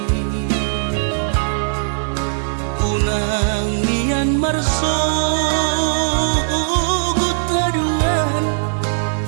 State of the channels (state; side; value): silent; left; 67 dB below the other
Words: unang nian marso gutaduan